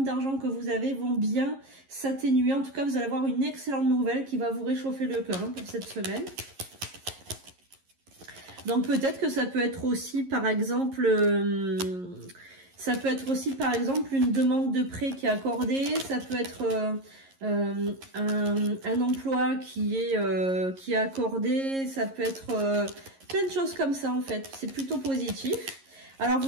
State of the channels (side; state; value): left; late; 11 ms